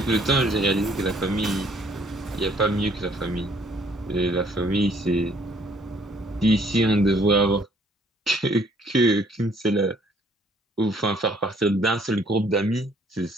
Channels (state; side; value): normal; both; correlation 0.62